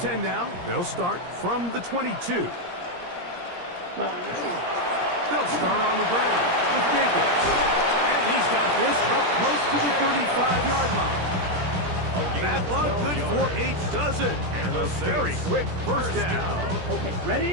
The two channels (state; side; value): late; left; 17 ms